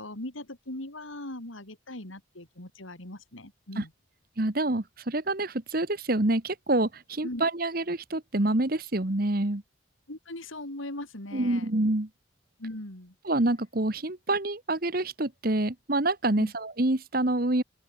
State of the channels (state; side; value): normal; both; correlation 0.38